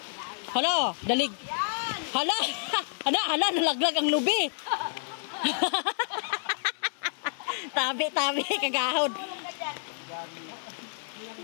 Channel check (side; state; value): right; silent; digital silence